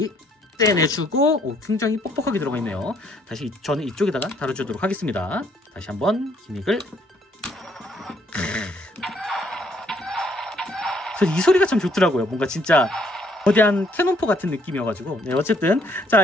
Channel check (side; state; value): both; normal; correlation 0.66